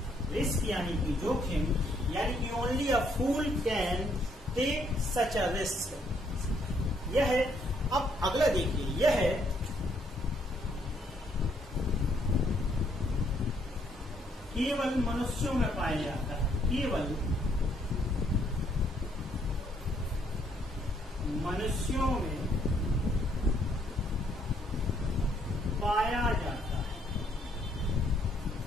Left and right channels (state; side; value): normal; both; correlation 0.69